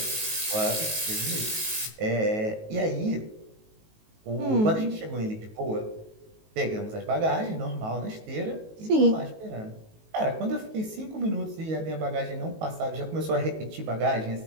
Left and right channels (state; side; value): late; left; 19 ms